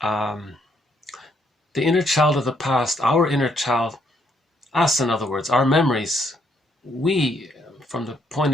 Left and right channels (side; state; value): both; normal; correlation 0.72